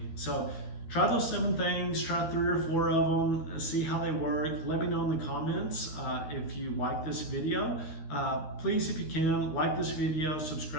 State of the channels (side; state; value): right; late; 13 ms